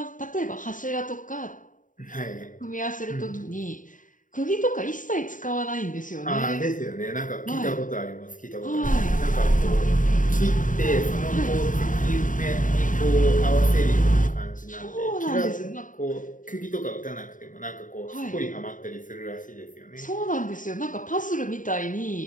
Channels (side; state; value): right; late; 0.38 ms